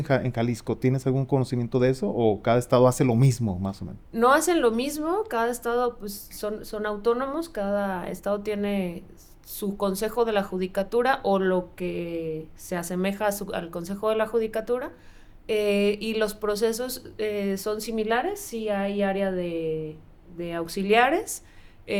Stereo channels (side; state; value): both; identical; correlation 1.00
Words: Jalisco? ¿Tienes algún conocimiento de eso o cada estado hace lo mismo, más o menos? No hacen lo mismo, cada estado pues son autónomos, cada estado tiene su consejo de la judicatura o lo que se asemeja al consejo de la judicatura, y los procesos son similares. Sí hay área de auxiliares,